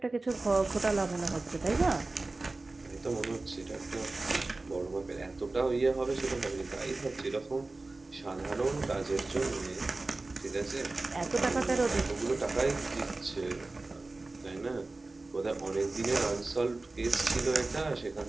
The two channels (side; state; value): left; quieter; 3.3 dB